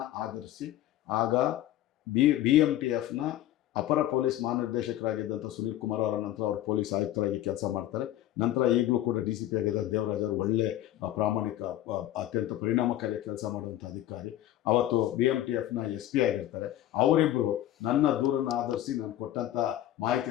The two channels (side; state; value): right; quieter; 13.4 dB